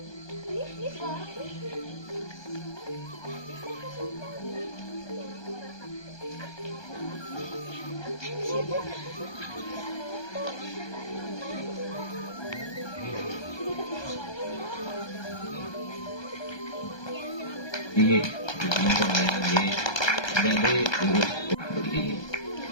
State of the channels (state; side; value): late; right; 1.2 ms